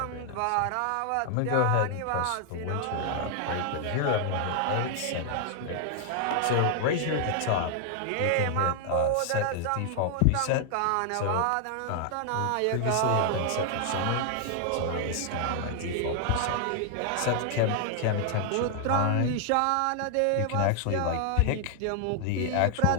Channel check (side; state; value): both; different; correlation 0.00